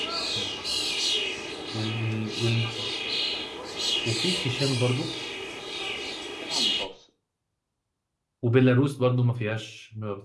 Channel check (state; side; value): identical; both; correlation 1.00